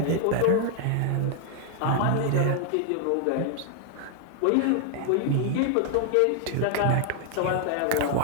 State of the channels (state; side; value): different; both; correlation 0.00